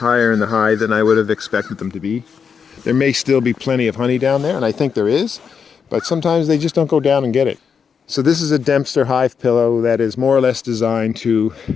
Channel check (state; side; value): quieter; right; 6.5 dB